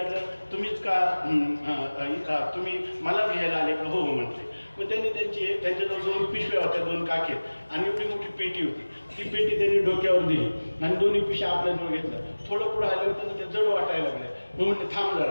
तुम्हीच का तुम्ही मला घ्यायला आले का? हो म्हटले. मग त्यांनी त्यांच्याजवळ 2 पिशव्या होत्या, 2 काखेत, आणि एवढी मोठी पेटी होती. ती पेटी त्यांनी डोक्यावर दिली आणि 2 पिशव्या आपल्याजवळ घेतल्या. थोडं पुढं आलं होतं ते जड वाटायला लागलं. मग म्हटलं थांब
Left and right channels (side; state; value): both; inverted; correlation -1.00